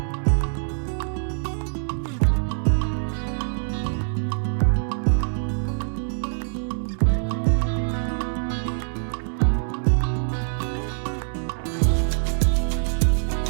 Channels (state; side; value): silent; left; 62 dB below the other